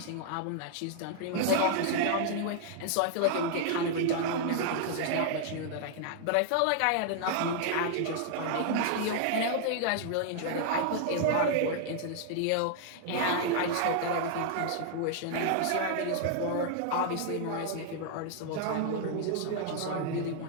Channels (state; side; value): different; both; correlation -0.01